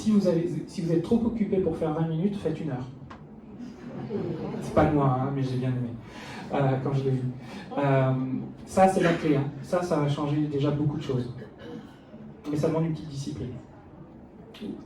vous êtes trop occupé pour faire 20 minutes, faites 1 heure. C'est pas de moi, mais j'ai bien aimé quand je l'ai vu. Ça, c'est la clé. Ça va changer déjà beaucoup de choses. Mais ça demande une petite discipline.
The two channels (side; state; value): both; identical; correlation 1.00